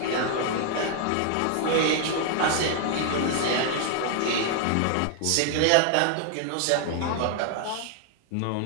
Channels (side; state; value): both; different; correlation 0.00